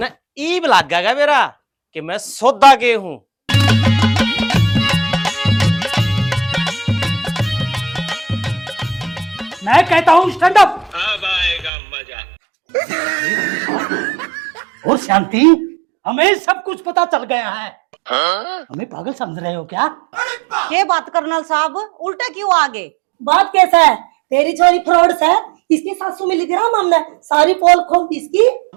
ईब लागेगा मेरा कि मैं सौदा के हूँ। मैं कहता हूँ स्टैंड अप। अब आएगा मजा। और शांति, हमें सब कुछ पता चल गया है। हमें पागल समझ रहे हो क्या? के बात कर्नल साहब, उल्टा क्यों आगे? बात कैसा है, तेरी छोरी फ्रॉड है, इसकी सासू मिली थी ना, हमने सारी पोल खोल दी इसकी।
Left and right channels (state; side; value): drops out; left; at 11.7 s